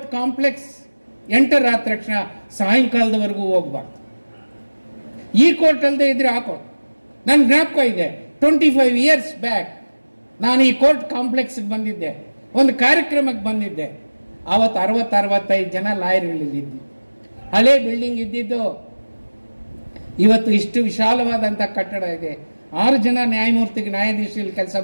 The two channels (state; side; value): inverted; both; correlation -1.00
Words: ಕಾಂಪ್ಲೆಕ್ಸ್ ಎಂಟರ್ ಆದ ತಕ್ಷಣ ಸಾಯಂಕಾಲದವರೆಗೂ ಹೋಗ್ಬಾರ್ದು. ಈ ಕೋರ್ಟ್ ಅಲ್ಲದೆ ಇದ್ರೆ ಆ ಕೋರ್ಟ್. ನನ್ನ ಜ್ಞಾಪಕ ಇದೆ, 25 ಇಯರ್ಸ್ ಬ್ಯಾಕ್ ನಾನು ಈ ಕೋರ್ಟ್ ಕಾಂಪ್ಲೆಕ್ಸ್ಗೆ ಬಂದಿದ್ದೆ, ಒಂದು ಕಾರ್ಯಕ್ರಮಕ್ಕೆ ಬಂದಿದ್ದೆ. ಆವತ್ತು 60-65 ಜನ ಲಾಯರ್ಗಳಿದ್ದು, ಹಳೆ ಬಿಲ್ಡಿಂಗ್ ಇದ್ದಿದ್ದು. ಇವತ್ತು ಇಷ್ಟು ವಿಶಾಲವಾದಂಥ ಕಟ್ಟಡ ಇದೆ. 6 ಜನ ನ್ಯಾಯಾಧೀಶರಲ್ಲಿ ಕೆಲಸ